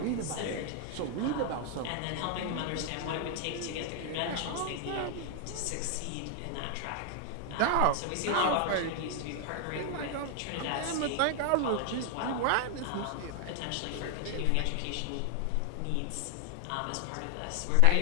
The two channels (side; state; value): both; different; correlation 0.00